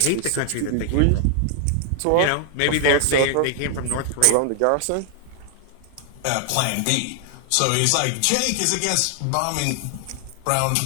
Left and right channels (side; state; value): both; different; correlation 0.00